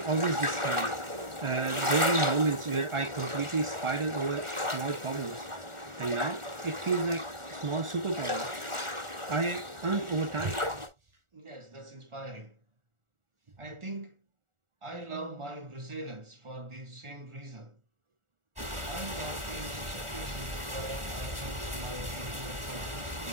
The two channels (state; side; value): late; left; 1.4 ms